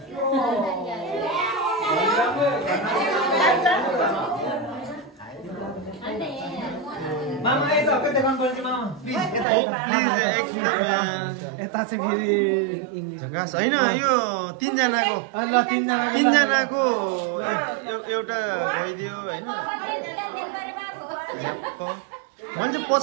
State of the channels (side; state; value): left; drops out; at 9.5 s